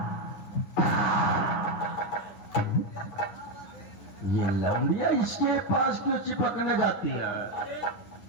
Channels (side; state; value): right; late; 10 ms